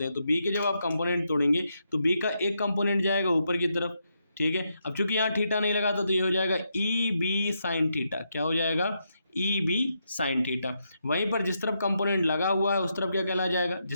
हैं, तो बी के जब आप कंपोनेंट तोड़ेंगे तो बी का एक कंपोनेंट जाएगा ऊपर की तरफ, ठीक है। अब चूंकि यहाँ थीटा नहीं लगा तो ये हो जाएगा ई बी साइन थीटा। क्या हो जाएगा, ई बी साइन थीटा। वहीं पर जिस तरफ कंपोनेंट लगा हुआ है उस तरफ क्या कहला जाएगा,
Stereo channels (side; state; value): both; inverted; correlation -0.81